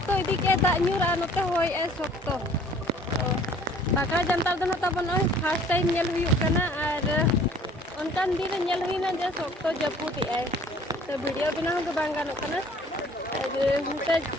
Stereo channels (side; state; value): both; normal; correlation 0.53